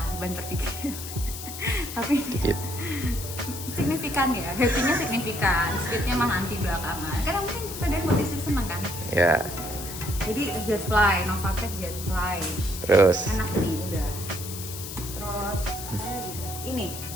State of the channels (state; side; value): noise; left; hiss, 9 dB below the sound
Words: banter dikit. Tapi Dikit. signifikan ya, happy-nya signifikan, speed-nya mah nanti belakangan. Karena mungkin sepeda buat istri seneng kan. Ya. Jadi Jetfly, Novatec Jetfly. Terus Enak nih udah. Terus ini